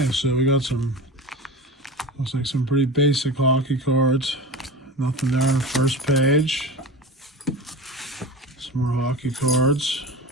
so we got looks like some pretty basic hockey cards. Nothing there on the first page. Some more hockey cards.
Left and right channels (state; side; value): normal; both; correlation 0.30